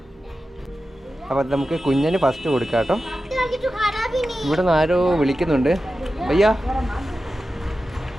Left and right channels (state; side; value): normal; both; correlation 0.93